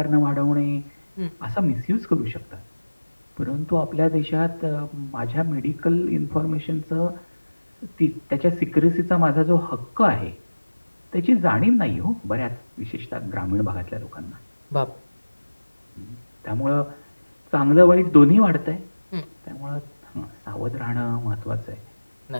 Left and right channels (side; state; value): both; inverted; correlation -1.00